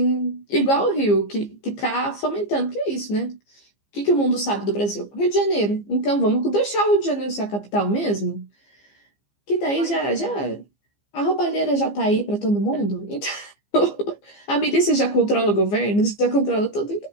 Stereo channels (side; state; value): right; late; 15 ms